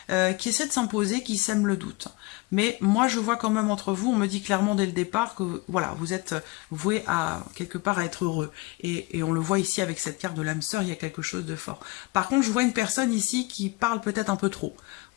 qui essaie de s'imposer, qui sème le doute. Mais moi, je vois quand même entre vous, on me dit clairement dès le départ que voilà, vous êtes voué à quelque part à être heureux. Et on le voit ici avec cette carte de l'âme sœur, il y a quelque chose de fort. Par contre, je vois une personne ici qui parle peut-être un peu trop.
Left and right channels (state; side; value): quieter; right; 24.2 dB